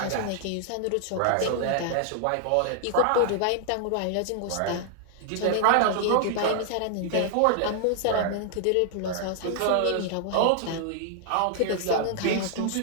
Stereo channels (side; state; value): both; different; correlation -0.01